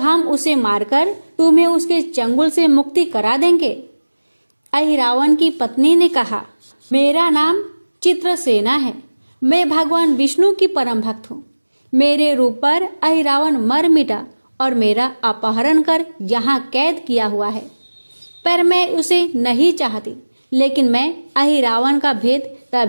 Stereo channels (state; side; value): inverted; both; correlation -1.00